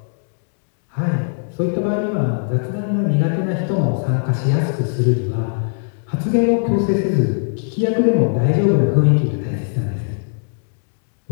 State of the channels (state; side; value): silent; right; digital silence